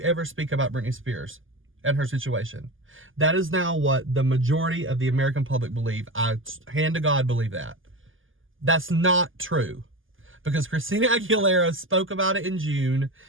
ever speak about Britney Spears and her situation. That is now what the majority of the American public believe. I, hand to God, believe that. That's not true, because Christina Aguilera spoke about it in June,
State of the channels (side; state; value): left; late; 0.58 ms